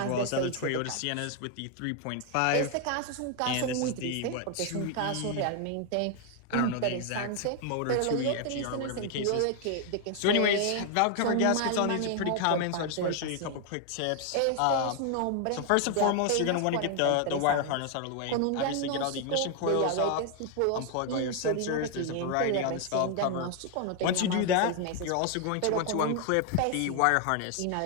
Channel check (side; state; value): both; different; correlation 0.00